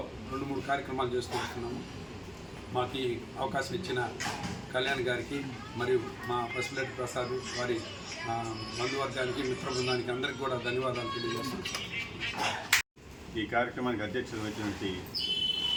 2-3 కార్యక్రమాలు చేస్తూ వస్తున్నాము. మాకు ఈ అవకాశం ఇచ్చిన కళ్యాణ్ గారికి మరియు మా పసుపులేటి ప్రసాద్ వారి బంధువర్గానికి మిత్ర బృందానికి అందరికీ కూడా ధన్యవాదాలు తెలియజేస్తున్నాం. ఈ కార్యక్రమానికి అధ్యక్షత వహించినటువంటి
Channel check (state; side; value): identical; both; correlation 1.00